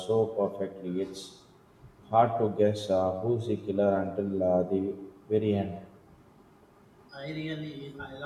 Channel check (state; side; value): identical; both; correlation 1.00